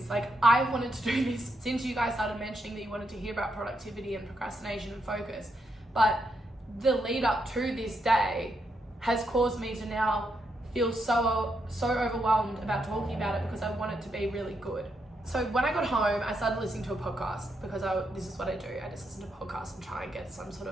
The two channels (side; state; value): both; normal; correlation 0.80